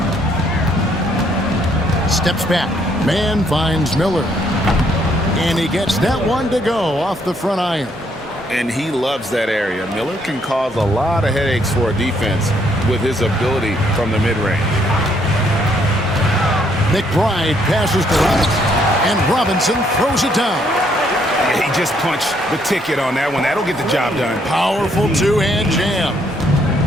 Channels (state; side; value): normal; both; correlation 0.70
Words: Steps back. Man finds Miller. And he gets that one to go off the front iron. And he loves that area. Miller can cause a lot of headaches for a defense with his ability from the mid-range. McBride passes to Robinson, and Robinson throws it down. He just punched the ticket on that one. That'll get the job done. Powerful two-hand jam.